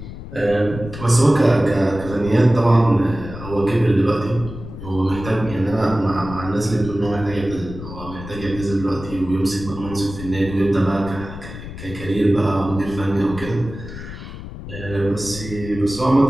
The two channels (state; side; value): noise; left; rumble, 11 dB below the sound